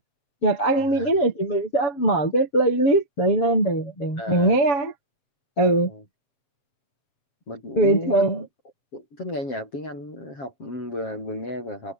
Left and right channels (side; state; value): right; late; 7.4 ms